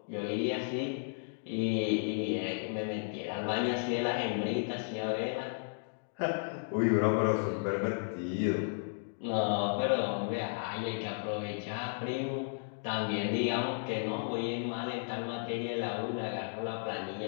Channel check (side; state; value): right; silent; digital silence